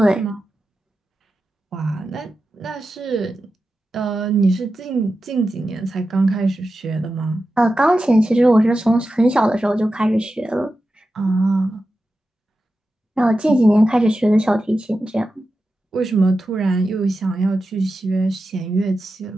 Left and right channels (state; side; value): normal; both; correlation 0.91